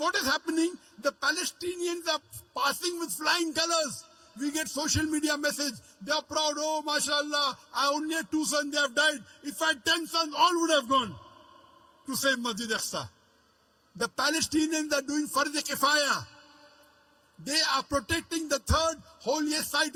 is happening? The Palestinians are passing with flying colors. We get social media message. They are proud. Oh, mashallah, I only had 2 sons, they have died. If I had 10 sons, all would have gone to save Masjid Aqsa. The Palestinians are doing Fard Kifaya. They are protecting the 3rd holiest site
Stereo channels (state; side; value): identical; both; correlation 1.00